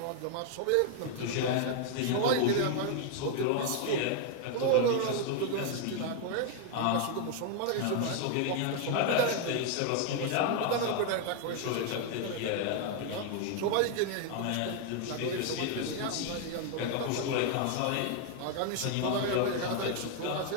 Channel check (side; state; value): both; different; correlation 0.00